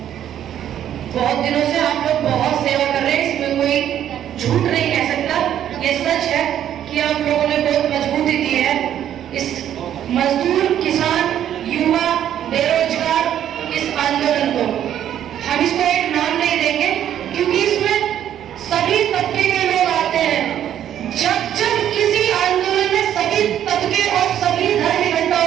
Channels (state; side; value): quieter; left; 10.6 dB